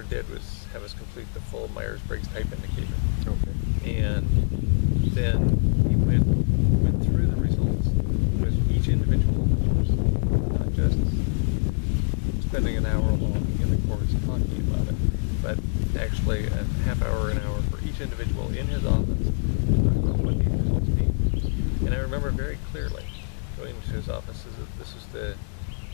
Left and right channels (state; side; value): silent; right; 62 dB below the other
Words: did was have us complete the full Myers-Briggs type indicator. Okay. And then he went through the results with each individual, not just spending an hour long in the course talking about it, but actually a half hour, an hour for each individual in his office, what these results mean. And I remember very clearly going into his office. This was the